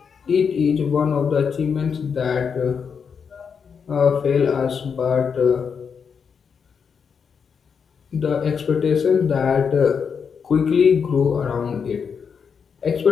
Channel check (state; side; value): quieter; right; 6.4 dB